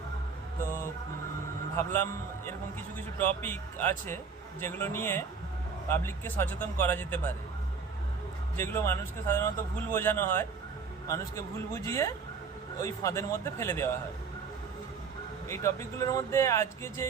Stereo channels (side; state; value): left; quieter; 5.3 dB